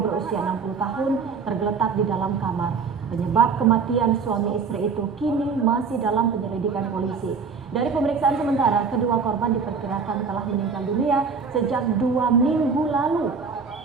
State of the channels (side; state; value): left; quieter; 5.3 dB